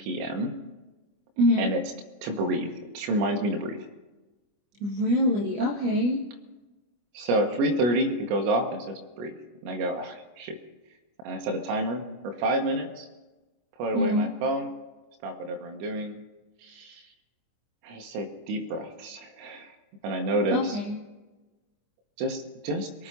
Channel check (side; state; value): left; late; 25 ms